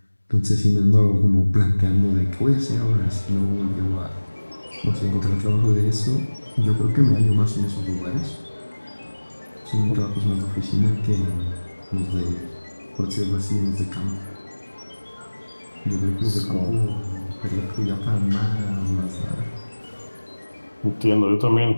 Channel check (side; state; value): both; inverted; correlation -1.00